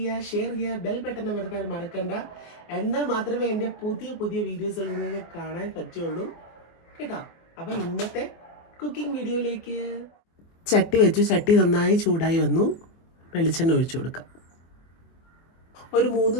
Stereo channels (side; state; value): right; late; 24 ms